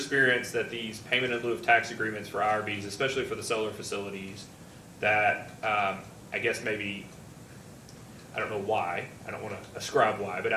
that these payment in lieu of tax agreements for IRBs, especially for the solar facilities, that I guess maybe, I don't know why, I don't want to ascribe why, but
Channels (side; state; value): both; identical; correlation 1.00